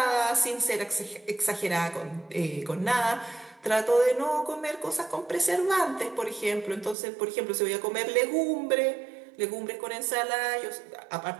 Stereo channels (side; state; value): left; drops out; at 7.0 s